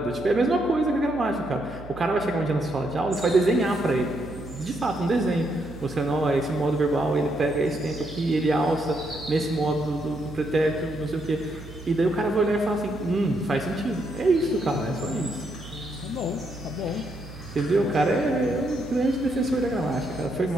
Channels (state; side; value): noise; right; hum, 15 dB below the sound